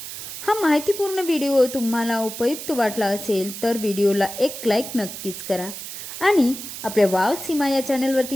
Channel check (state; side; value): noise; right; hiss, 9 dB below the sound